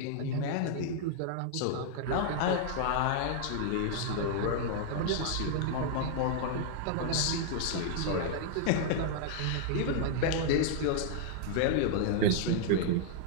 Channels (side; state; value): both; different; correlation -0.01